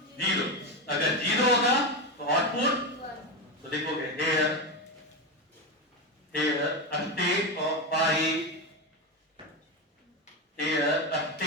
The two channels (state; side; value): normal; both; correlation 0.14